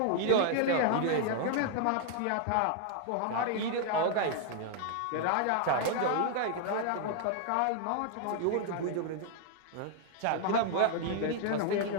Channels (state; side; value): different; both; correlation 0.00